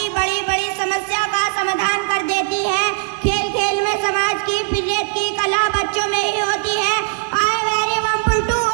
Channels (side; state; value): left; silent; digital silence